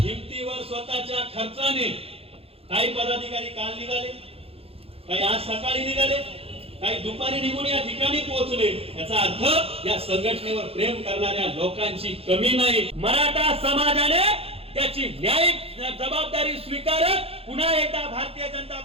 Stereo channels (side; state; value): left; late; 0.28 ms